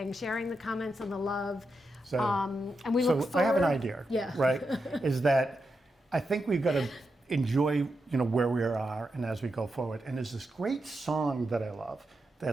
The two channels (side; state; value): both; normal; correlation 0.87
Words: sharing the comments and the love. So, And we look so forward. I have an idea, Yeah. right? Is that I think we've got to enjoy, you know, where we are and as we go forward. And there's this great song that I love